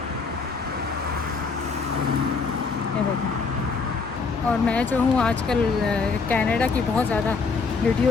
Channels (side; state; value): right; quieter; 4.6 dB